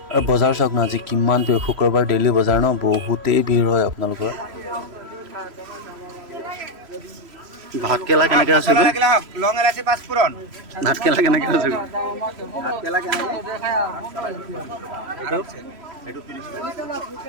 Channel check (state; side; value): late; left; 3.1 ms